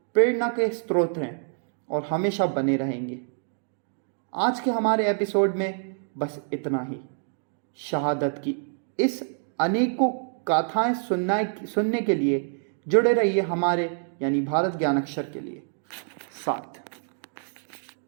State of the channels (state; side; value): silent; left; 60 dB below the other